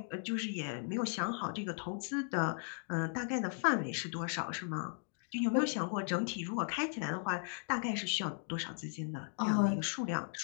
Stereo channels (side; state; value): right; silent; 53 dB below the other